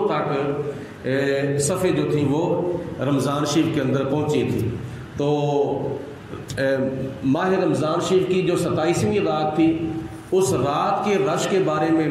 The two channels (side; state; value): both; identical; correlation 1.00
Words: تک صفیں جو تھیں وہ رمضان شریف کے اندر پہنچی تھی۔ تو ماہ رمضان شریف کی جو 27ویں رات تھی، اس رات کے رش کے بارے